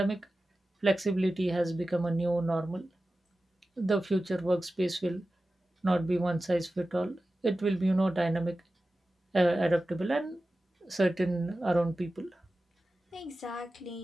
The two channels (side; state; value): both; normal; correlation 0.95